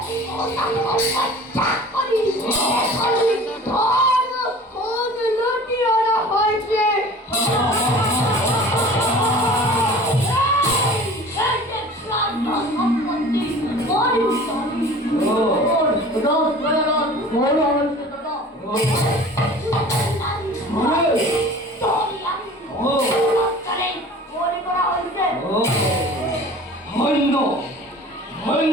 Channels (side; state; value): both; normal; correlation 0.43